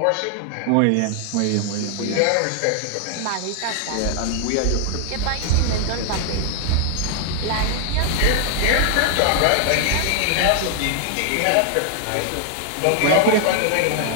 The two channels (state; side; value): different; both; correlation 0.00